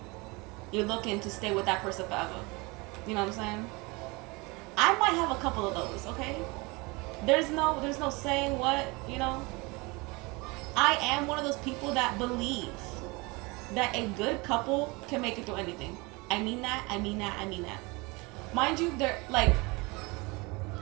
you're looking to stay with that person forever. You know what I'm saying? I might have a couple of those, okay? There's no saying what, you know? I am one of those people that believe that a good couple can make it through anything. I mean that. Mind you, they're, like,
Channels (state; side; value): quieter; left; 26.0 dB